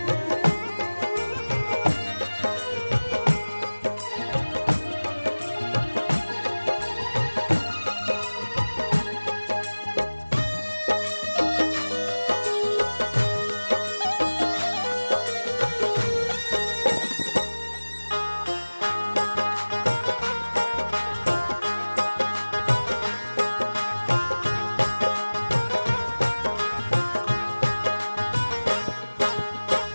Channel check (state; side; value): inverted; both; correlation -1.00